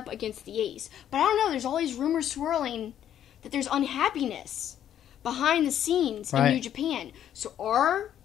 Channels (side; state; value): right; quieter; 10.4 dB